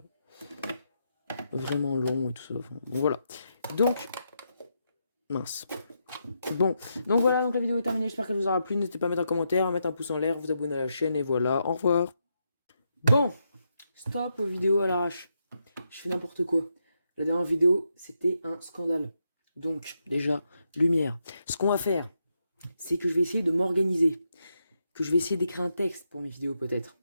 long et tout ça. Enfin, bon, voilà. Donc, mince. Bon, donc voilà, donc la vidéo est terminée, j'espère qu'elle vous aura plu, n'hésitez pas à mettre un commentaire, à mettre un pouce en l'air, vous abonner à la chaîne, et voilà, au revoir. Bon, stop aux vidéos à l'arrache, je fais n'importe quoi. La dernière vidéo, c'était un scandale. Donc, déjà, lumière. Ce qu'on va faire, c'est que je vais essayer de m'organiser, que je vais essayer d'écrire un texte pour mes vidéos peut-être,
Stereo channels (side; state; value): both; inverted; correlation -0.82